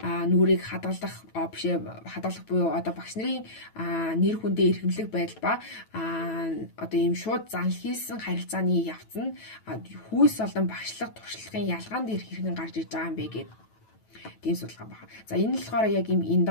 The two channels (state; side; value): late; right; 9.1 ms